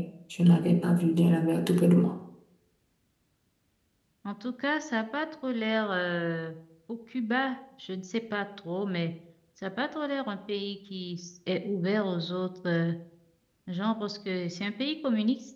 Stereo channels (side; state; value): both; identical; correlation 1.00